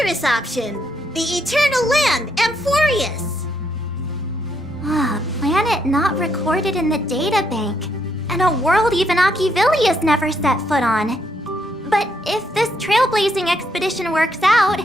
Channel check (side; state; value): both; normal; correlation 0.76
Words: option, the eternal land, Amphorius. A planet not recorded in the databank, and a world even Achivilius never set foot on. But if this trailblazing expedition works out,